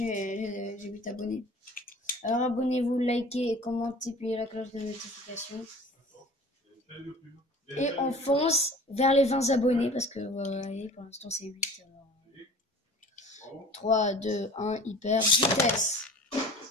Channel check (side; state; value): both; normal; correlation 0.43